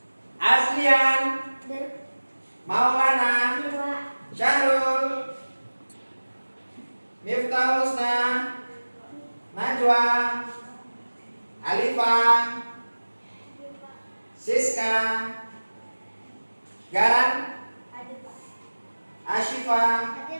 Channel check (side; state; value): both; inverted; correlation -1.00